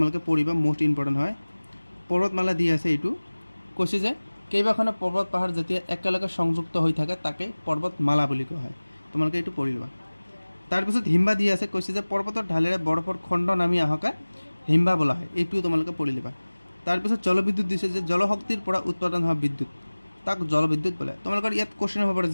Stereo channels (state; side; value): inverted; both; correlation -1.00